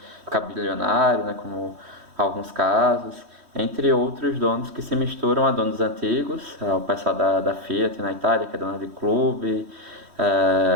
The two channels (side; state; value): left; late; 3.1 ms